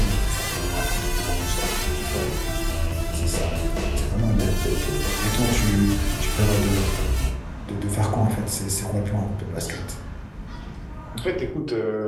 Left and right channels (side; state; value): both; identical; correlation 1.00